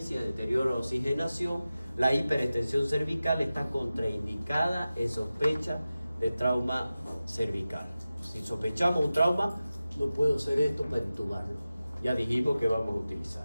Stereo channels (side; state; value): both; inverted; correlation -0.94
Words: deterioro de la oxigenación, la hiperextensión cervical está contraindicada en sospecha de trauma cervical. Si sospechamos un trauma, no puedo hacer esto para intubarlo. Ya dijimos que vamos a utilizar.